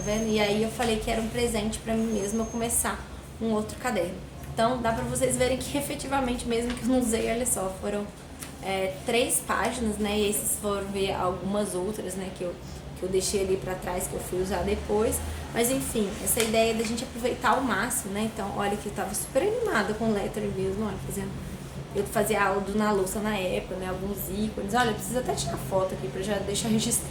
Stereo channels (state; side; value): identical; both; correlation 1.00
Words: vendo? E aí eu falei que era um presente pra mim mesma eu começar um outro caderno. Então dá pra vocês verem que efetivamente, mesmo que eu não usei, olha só, foram 3 páginas, né? E esses foram ver algumas outras, né? Que eu deixei ali pra trás, que eu fui usar depois. Mas enfim, essa ideia da gente aproveitar ao máximo, né? Então, olha que eu tava super animada com o lettering mesmo, olha, fazendo... Eu fazia aula do Na Louça na época, né? Alguns ícones. Olha, eu preciso até tirar foto aqui pra já deixar